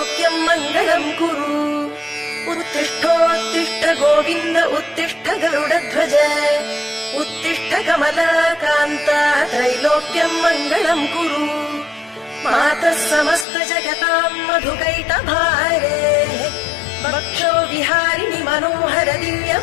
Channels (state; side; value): drops out; right; at 13.5 s